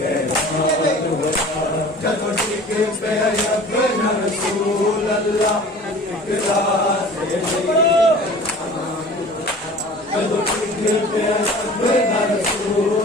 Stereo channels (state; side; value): normal; both; correlation 0.43